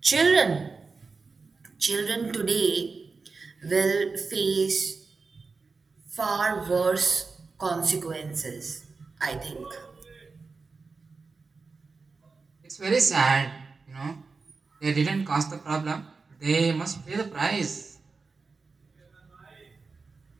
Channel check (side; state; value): left; quieter; 4.4 dB